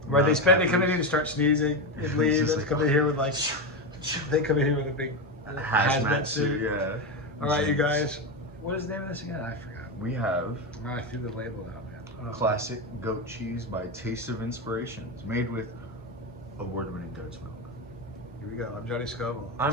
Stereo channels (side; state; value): both; normal; correlation 0.13